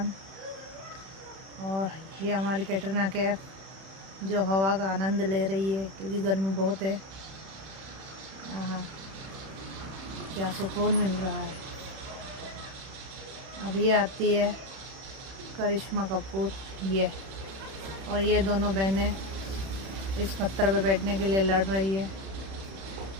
और ये हमारी कैटरीना कैफ जो हवा का आनंद ले रही है क्योंकि गर्मी बहुत है। हाँ, क्या सुकून मिल रहा है। अब ये आती है करिश्मा कपूर ये, और ये दोनों बहनें इस पत्थर पे बैठने के लिए लड़ रही है।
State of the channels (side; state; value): left; late; 31 ms